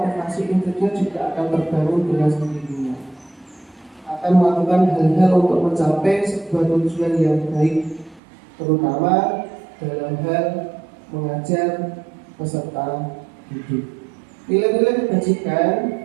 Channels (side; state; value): left; drops out; at 8.2 s